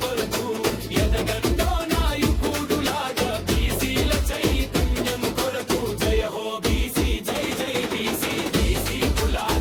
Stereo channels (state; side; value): identical; both; correlation 1.00